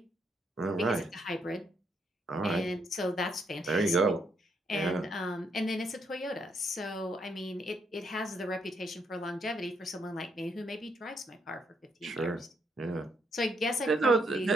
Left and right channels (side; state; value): both; normal; correlation 0.75